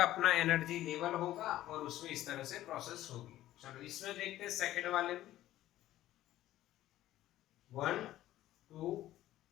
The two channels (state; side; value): quieter; right; 14.3 dB